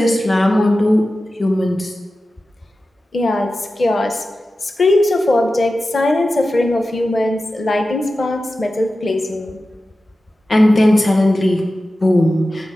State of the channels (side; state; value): both; normal; correlation 0.94